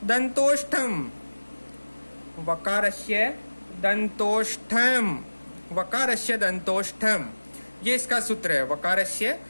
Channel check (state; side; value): inverted; both; correlation -1.00